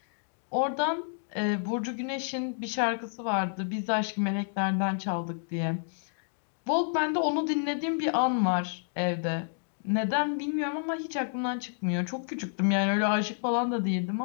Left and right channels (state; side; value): silent; right; digital silence